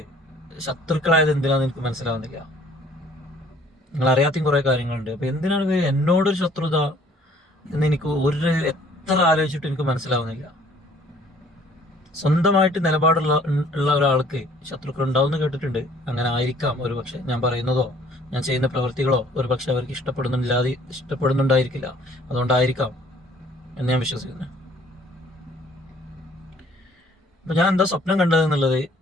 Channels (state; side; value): normal; both; correlation 0.57